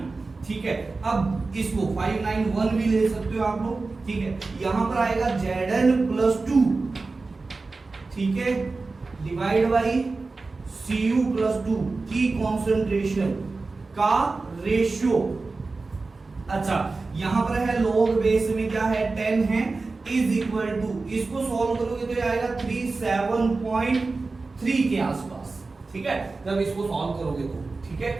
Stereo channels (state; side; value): quieter; left; 3.8 dB